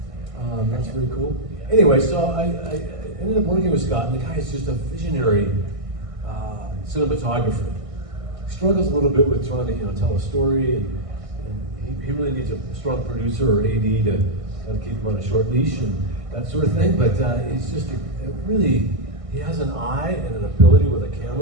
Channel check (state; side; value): late; left; 1.6 ms